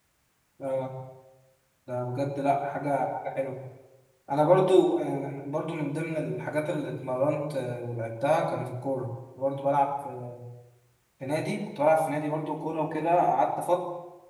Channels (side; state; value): both; identical; correlation 1.00